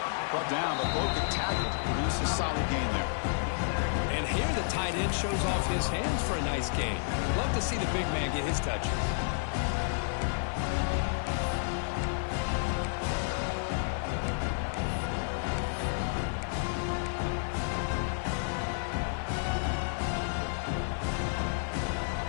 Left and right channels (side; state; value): right; silent; digital silence